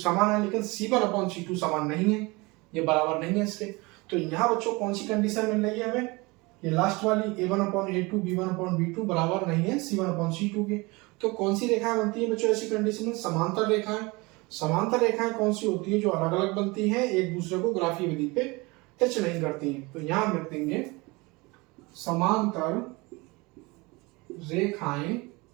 है, लेकिन c1/c2 समान नहीं है, ये बराबर नहीं है इसके। तो यहाँ बच्चों कौन सी कंडीशन मिल रही है हमें? ये लास्ट वाली a1/a2 b1/b2 बराबर नहीं है c1/c2 के। तो कौन सी रेखाएं बनती है बच्चों ऐसी कंडीशन में? समांतर रेखाएं। समांतर रेखाएं कौन सी होती है? जो अलग अलग बनती है, एक दूसरे को ग्राफीय विधि पे टच नहीं करती हैं। तो यहाँ हम लिख देंगे समांतर रेखाएं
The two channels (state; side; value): quieter; left; 24.8 dB